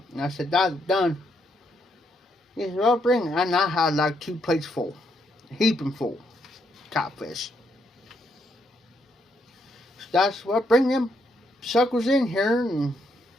and I said, Dad's done. He said, well, bring it. And I had like 2 plates full, heaping full, catfish. So that's what, bring them suckers in here and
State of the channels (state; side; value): normal; both; correlation 0.76